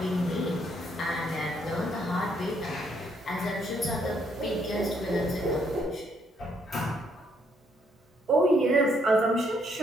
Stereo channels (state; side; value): normal; both; correlation 0.71